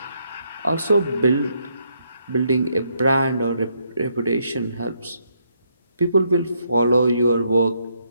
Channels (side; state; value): both; inverted; correlation -0.75